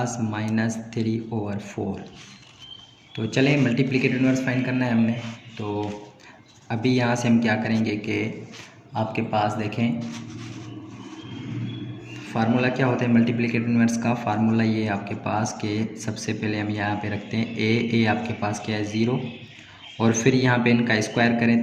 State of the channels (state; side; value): identical; both; correlation 1.00